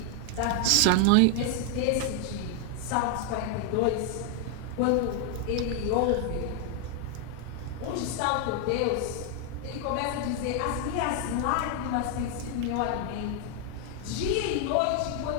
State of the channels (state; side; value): different; both; correlation 0.01